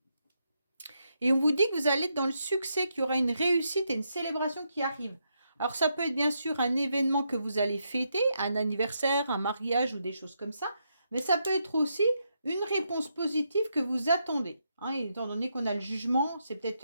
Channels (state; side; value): inverted; both; correlation -0.80